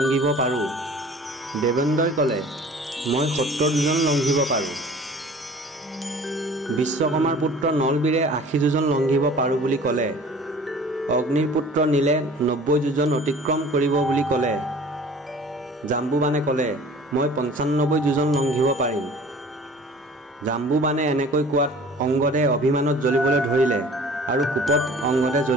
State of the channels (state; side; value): normal; both; correlation 0.46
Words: পাৰোঁ। দেৱেন্দ্ৰই ক'লে, মই 70 যোজন লংঘিব পাৰোঁ। বিশ্বকৰ্মাৰ পুত্ৰ নলবীৰে 80 যোজন লংঘিব পাৰোঁ বুলি ক'লে। অগ্নিৰ পুত্ৰ নীলে 90 যোজন অতিক্ৰম কৰিব বুলি ক'লে। জাম্বুবানে ক'লে, মই 95 যোজন লংঘিব পাৰিম। জাম্বুবানে এনেকৈ কোৱাত অংগদে অভিমানত জ্বলিবলৈ ধৰিলে আৰু কোপত অংগদে